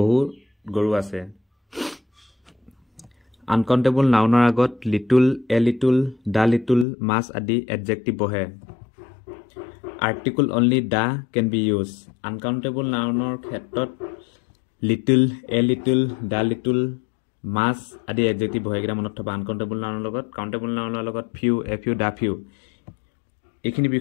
গৰু আছে uncountable nounৰ আগত little, a little, the little, much আদি adjective বহে article only the can be used uncountable nounৰ ক্ষেত্ৰত little, a little, the little, much আদি adjective বহে এটা মনত থবা uncountable nounৰ লগত countable nounৰ লগত few, a few, the few এইখিনি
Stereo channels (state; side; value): drops out; right; at 6.9 s